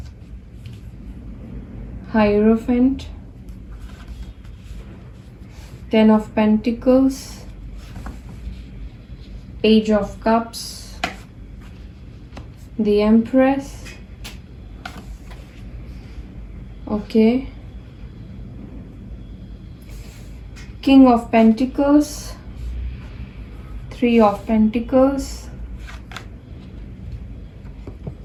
hierophant, Ten of Pentacles, Page of Cups, the Empress, okay, King of Pentacles, Three of Pentacles,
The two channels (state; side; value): identical; both; correlation 1.00